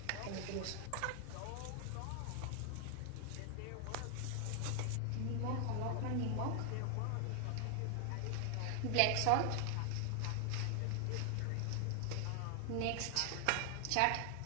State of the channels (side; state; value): both; different; correlation 0.00